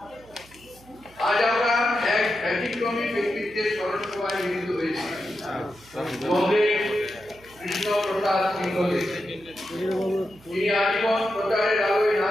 আজ আমরা এক ব্যতিক্রমী ব্যক্তিত্বের স্মরণ সভায় মিলিত হয়েছি। কমরেড কৃষ্ণপ্রসাদ সিংহদেব, তিনি আজীবন প্রচারের আলোয় না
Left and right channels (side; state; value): right; noise; hum, 25 dB below the sound